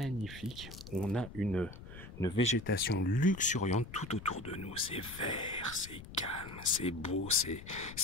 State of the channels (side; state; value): left; noise; rumble, 14 dB below the sound